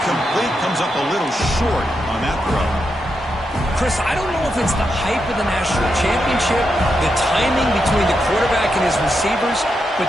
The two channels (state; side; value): normal; both; correlation 0.84